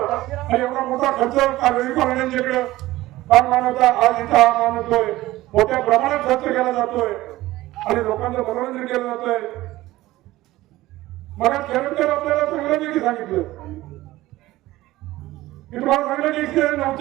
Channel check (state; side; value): quieter; left; 17.1 dB